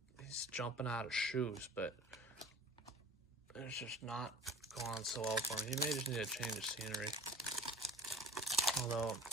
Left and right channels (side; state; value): both; normal; correlation 0.42